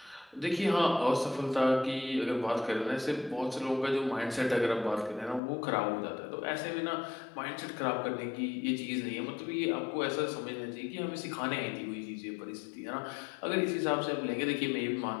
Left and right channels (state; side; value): drops out; right; at 5.4 s